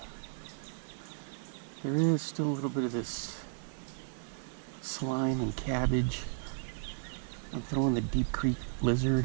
There is still a little bit of this slime and cabbage. I'm throwing the Deep Creek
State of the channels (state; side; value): silent; left; 55 dB below the other